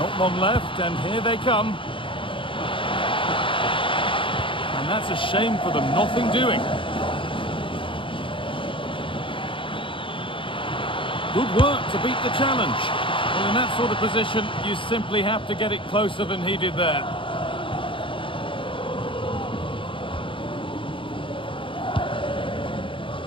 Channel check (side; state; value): right; late; 0.25 ms